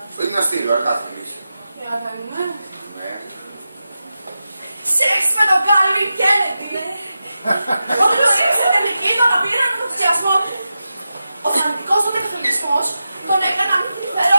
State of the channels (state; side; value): inverted; both; correlation -0.91